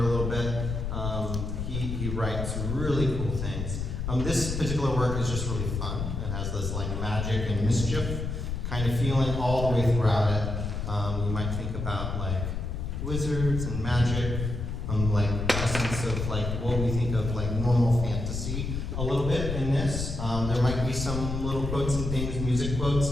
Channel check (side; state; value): left; noise; rumble, 3 dB below the sound